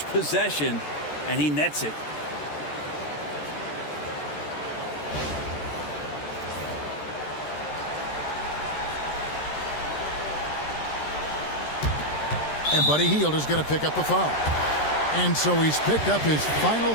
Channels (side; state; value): right; late; 13 ms